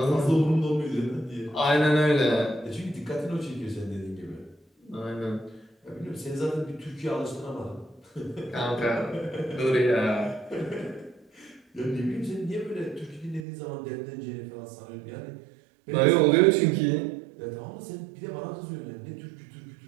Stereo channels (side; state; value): left; drops out; at 13.5 s